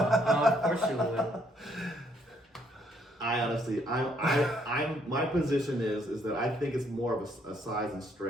course you would. I honestly, I'm my position is that I think it's more of a size and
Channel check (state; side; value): normal; both; correlation 0.69